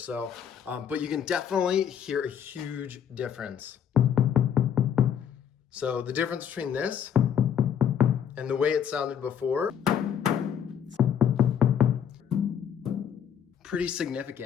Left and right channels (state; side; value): quieter; right; 8.5 dB